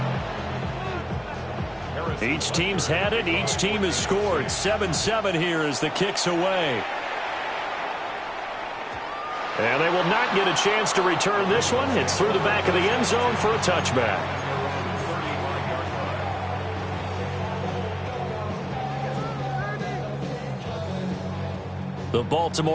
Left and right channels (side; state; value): both; identical; correlation 1.00